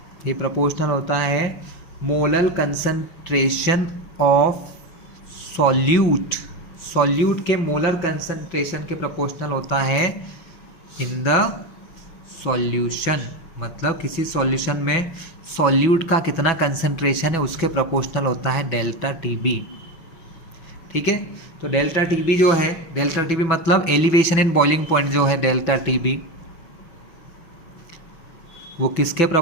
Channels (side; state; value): right; late; 6.0 ms